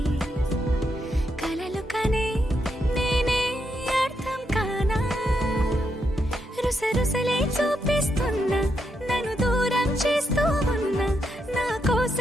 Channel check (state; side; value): normal; both; correlation 0.81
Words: కలలు కనే నేనే అర్థం కానా రుసరుసలే చూపిస్తున్నా నన్ను దూరం చేస్తూ ఉన్నా నా